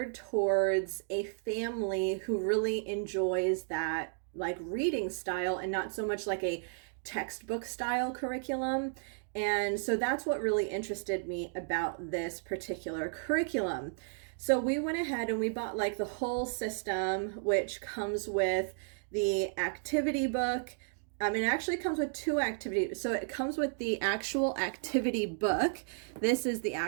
towards a family who really enjoys that like reading style and not so much like a textbook style curriculum. And so that's what really interested me about this particular curriculum. So we went ahead and we bought like the whole system, which comes with the activity book. It actually comes with two activities. So it comes with the actual activity book. This is the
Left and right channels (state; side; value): silent; left; digital silence